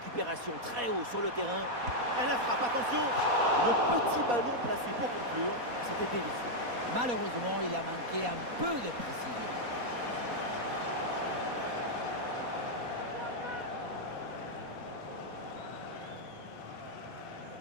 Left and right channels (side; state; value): left; late; 4.1 ms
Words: très haut sur le terrain. Elle la frappe, attention. Le petit ballon placé pour conclure, c'était délicieux. Malheureusement, il a manqué un peu de précision.